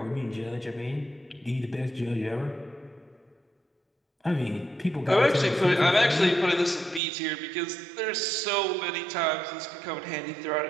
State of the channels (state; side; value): drops out; left; at 7.0 s